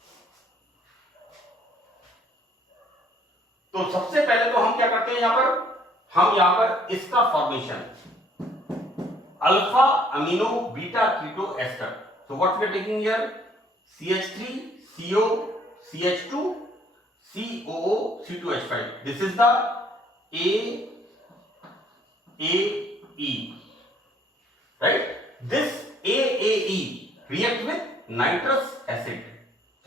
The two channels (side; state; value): both; normal; correlation 0.61